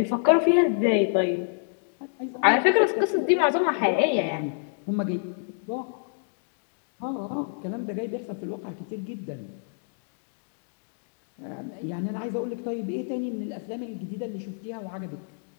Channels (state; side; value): silent; right; digital silence